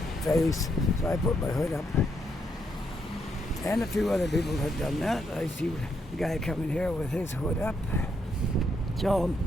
face. So I put my hood up. And a few other people have done that. I see the guy coming here with his hood up. So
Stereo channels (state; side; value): normal; both; correlation 0.77